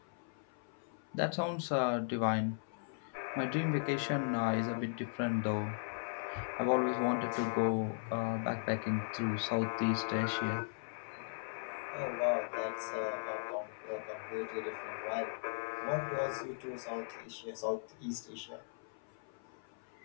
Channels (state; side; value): silent; right; 53 dB below the other